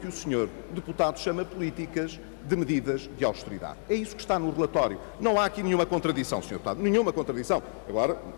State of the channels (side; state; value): right; silent; 59 dB below the other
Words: o Sr. Deputado chama políticas de medidas de austeridade. É isso que está no relatório. Não há aqui nenhuma contradição, Sr. Deputado, nenhuma contradição. Agora,